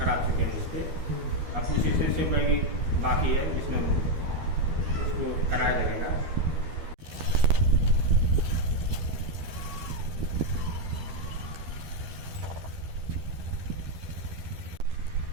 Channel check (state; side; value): late; left; 12 ms